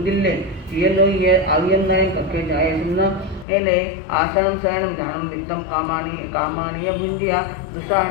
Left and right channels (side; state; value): right; drops out; at 3.5 s